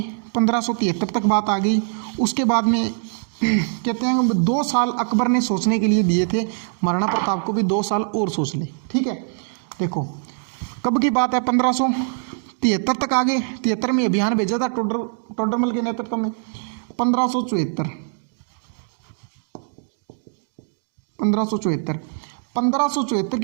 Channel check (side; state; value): left; silent; 64 dB below the other